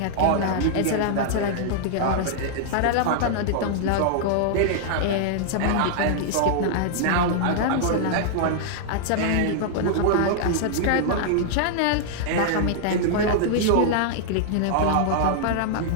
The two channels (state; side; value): different; both; correlation -0.01